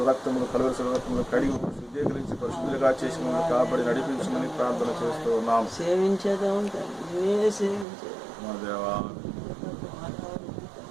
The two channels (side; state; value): left; drops out; at 7.9 s